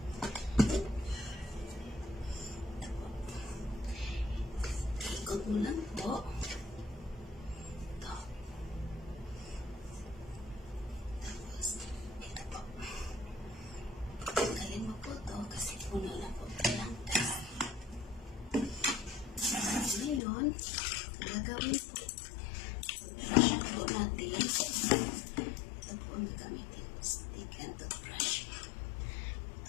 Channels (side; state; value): right; drops out; at 20.2 s